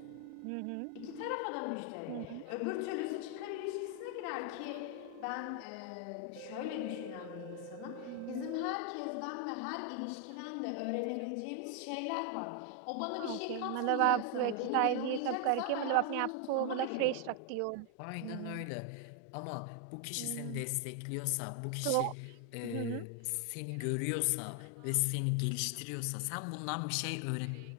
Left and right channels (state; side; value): different; both; correlation 0.01